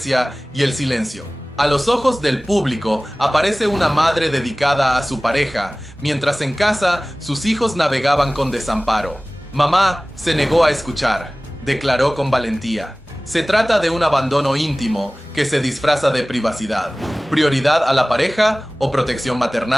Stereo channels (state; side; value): normal; both; correlation 0.98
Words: y el silencio. A los ojos del público aparece una madre dedicada a su pareja, mientras en casa sus hijos navegaban con desamparo. Mamá se negó a escuchar, declaró con valentía. Se trata de un abandono íntimo que se disfraza de privacidad. ¿Prioridad a la pareja o protección